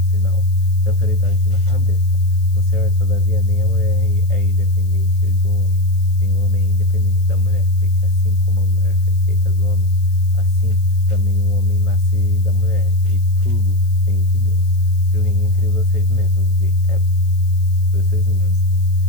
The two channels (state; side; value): noise; left; hiss, 27 dB below the sound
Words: sinal de autoridade na cabeça. No Senhor, todavia, nem a mulher é independente do homem, nem o homem é independente da mulher, porque assim como a mulher foi feita do homem, assim também o homem nasce da mulher, e tudo vem de Deus. Julguem entre vocês mesmos, é